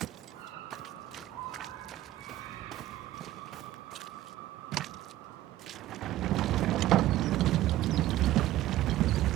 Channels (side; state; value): left; quieter; 14.9 dB